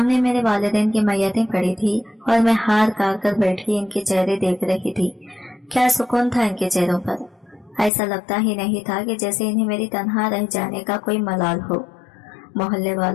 मेरे वालिदैन की मैयतें पड़ी थी और मैं हार काट कर बैठी इनके चेहरे देख रही थी। क्या सुकून था इनके चेहरों पर। ऐसा लगता ही नहीं था कि जैसे इन्हें मेरी तन्हा रह जाने का कोई मलाल हो। मोहल्ले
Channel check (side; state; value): right; drops out; at 7.9 s